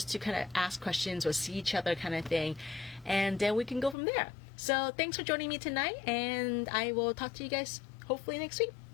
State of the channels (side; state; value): right; drops out; at 4.0 s